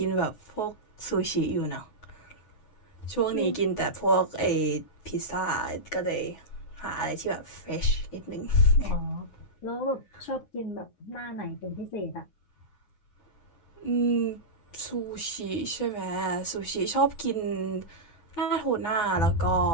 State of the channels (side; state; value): right; late; 9.6 ms